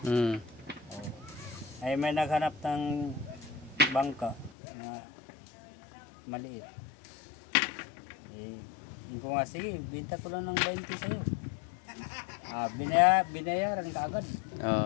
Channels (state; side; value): drops out; right; at 4.5 s